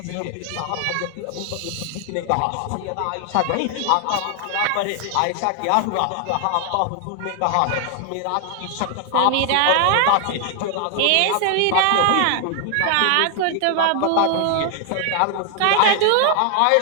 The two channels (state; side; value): different; both; correlation 0.00